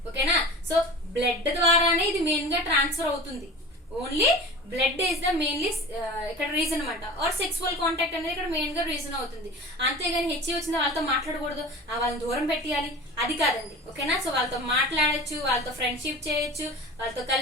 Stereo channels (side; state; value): both; normal; correlation 0.35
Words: ఓకేనా. సో బ్లడ్ ద్వారానే ఇది మెయిన్ గా ట్రాన్స్ఫర్ అవుతుంది. Only blood is the mainly ఇక్కడ రీజన్ అనమాట. ఆర్ సెక్సువల్ కాంటాక్ట్ అనేది ఇక్కడ మెయిన్ గా రీజన్ అవుతుంది. అంతేగాని హెచ్ఐవి వచ్చిన వాళ్ళతో మాట్లాడకూడదు, వాళ్ళని దూరం పెట్టేయాలి అది కాదండి. ఓకేనా. సో వాళ్ళతో మాట్లాడచ్చు, వాళ్ళతో ఫ్రెండ్షిప్ చేయొచ్చు, వాళ్ళతో